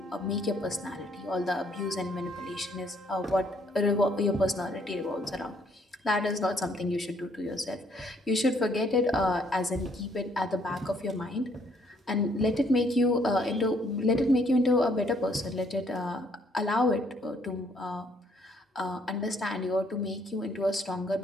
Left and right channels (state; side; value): normal; both; correlation 0.66